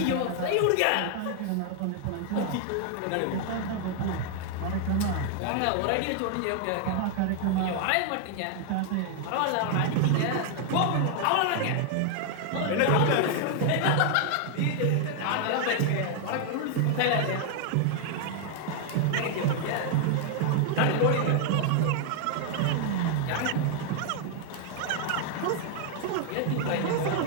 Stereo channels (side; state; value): both; different; correlation 0.00